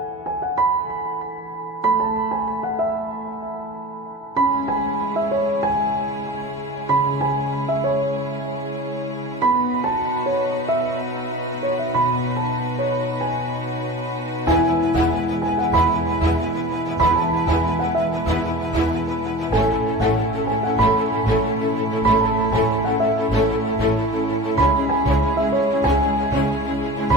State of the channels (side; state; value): both; normal; correlation 0.35